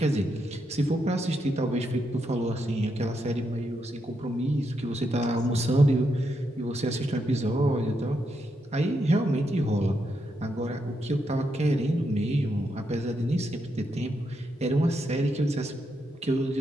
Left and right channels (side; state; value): both; normal; correlation 0.81